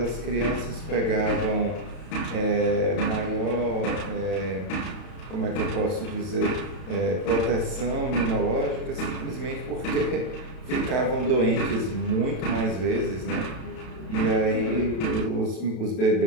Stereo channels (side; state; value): right; late; 32 ms